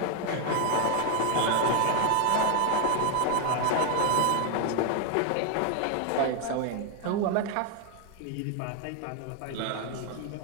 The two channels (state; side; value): different; both; correlation 0.00